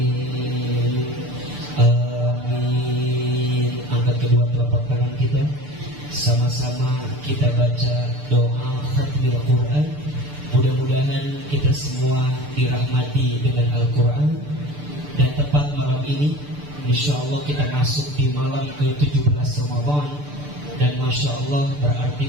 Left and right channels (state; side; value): late; left; 6.8 ms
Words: Amin. Angkat kedua telapak tangan kita. Sama-sama kita baca doa khatmil Quran. Mudah-mudahan kita semua dirahmati dengan Al-Quran. Dan tepat malam ini, insya Allah kita masuk di malam ke-17 Ramadan. Dan Masya Allah